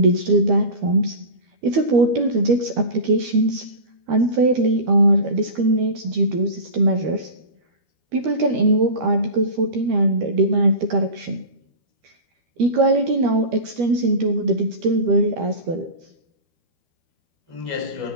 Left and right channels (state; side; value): late; left; 12 ms